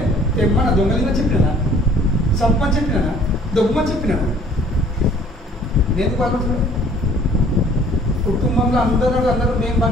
తెమ్మన్న దొంగలిందని చెప్పినా చంపని చెప్పినా, దొబ్బమని చెప్పినా, నేను బాగుంటున్నా. కుటుంబంలో అందరూ మేము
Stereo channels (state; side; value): normal; both; correlation 0.55